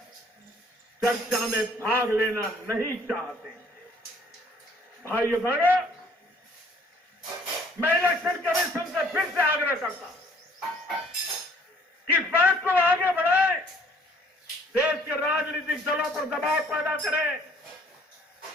चर्चा में भाग लेना नहीं चाहते। भाइयों बहनों, मैं इलेक्शन कमीशन से फिर से आग्रह करता हूं कि इस बात को आगे बढ़ाएं, देश के राजनीतिक दलों पर दबाव पैदा करें,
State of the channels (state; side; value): normal; both; correlation 0.59